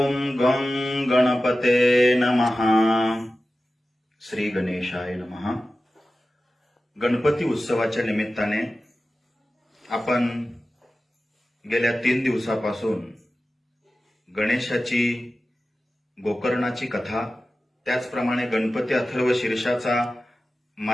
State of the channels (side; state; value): both; normal; correlation 0.94